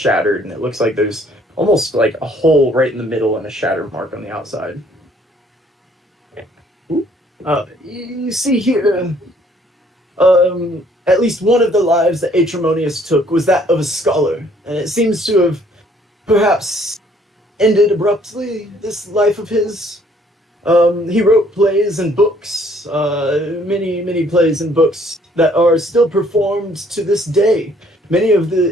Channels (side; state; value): both; normal; correlation 0.62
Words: and it looks like there's almost like a hole right in the middle and a shatter mark on the outside. You see here, at least one of the lives that Aetremonius took was that of a scholar, and it seems to have perhaps ended abruptly, this life of his. He wrote plays and books, many plays and books that are still performed to this day. Many of